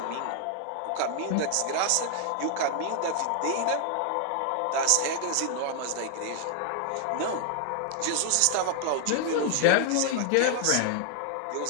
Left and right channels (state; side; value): different; both; correlation 0.00